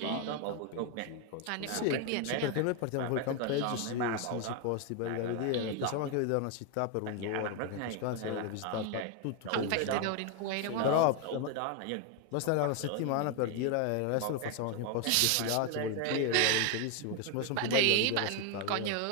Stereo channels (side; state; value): both; different; correlation 0.01